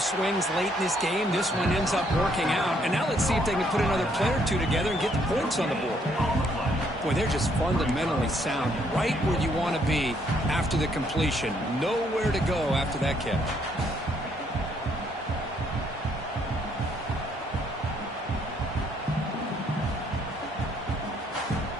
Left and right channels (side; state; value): both; normal; correlation 0.69